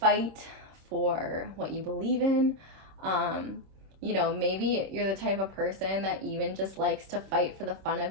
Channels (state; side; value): late; left; 26 ms